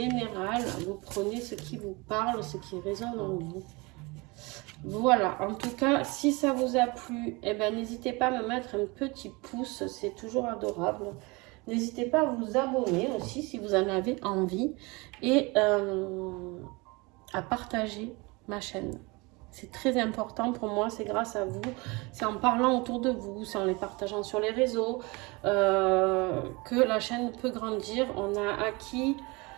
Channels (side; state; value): left; quieter; 26.0 dB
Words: Vous prenez ce qui vous parle, ce qui résonne en vous. Voilà, en tout cas, si ça vous a plu, eh ben, n'hésitez pas à me mettre un petit pouce, c'est toujours adorable. N'hésitez pas à vous abonner aussi si vous en avez envie et à partager ma chaîne. C'est très important pour moi, c'est grâce à vous, c'est en parlant autour de vous, c'est en les partageant sur les réseaux que la chaîne peut grandir. On a acquis...